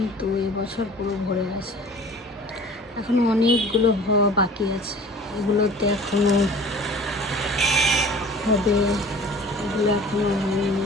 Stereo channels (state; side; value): normal; both; correlation 0.45